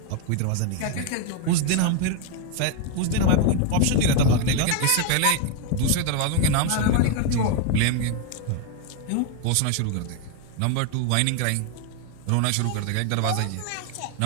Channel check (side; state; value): both; different; correlation 0.01